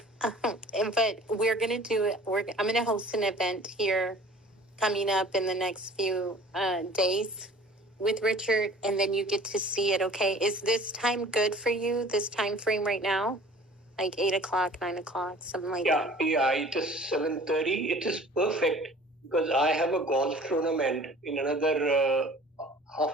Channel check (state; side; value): normal; both; correlation 0.47